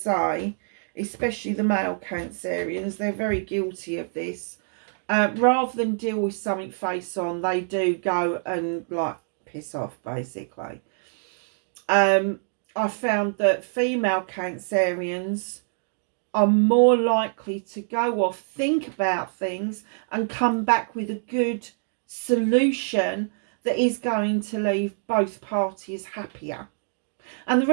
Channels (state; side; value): silent; left; digital silence